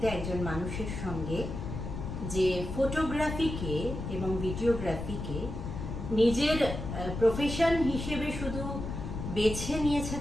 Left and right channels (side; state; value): left; noise; rumble, 6 dB below the sound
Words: একজন মানুষের সঙ্গে যে ফটোগ্রাফিকে এবং ভিডিওগ্রাফিকে নিজের প্রফেশন হিসেবে শুধু বেছে নিয়েছে